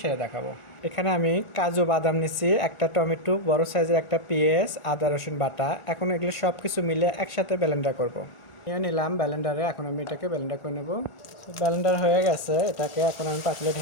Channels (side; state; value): right; late; 1.4 ms